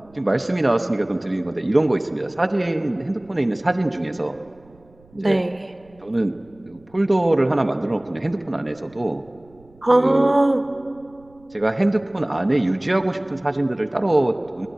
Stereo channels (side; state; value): right; noise; rumble, 29 dB below the sound